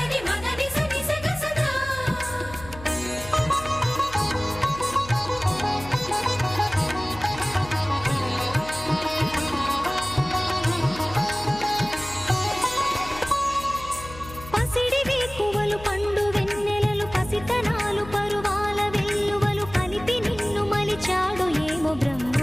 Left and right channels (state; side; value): noise; left; hum, 16 dB below the sound